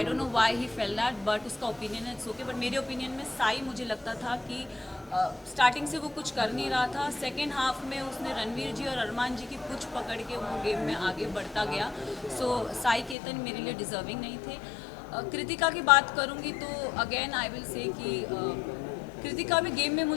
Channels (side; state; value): right; drops out; at 13.2 s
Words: don't know why he fail that, but उसका ओपिनियन है, इट्स ओके। बट मेरे ओपिनियन में साई, मुझे लगता था कि स्टार्टिंग से वो कुछ कर नहीं रहा था। सेकेंड हाफ में उसने रणवीर जी और अरमान जी की पुछ पकड़ के वो गेम में आगे बढ़ता गया। सो साई केतन मेरे लिए डिज़र्विंग नहीं थे। कृतिका की बात करूंगी तो अगेन आई विल से कि कृतिका भी गेम में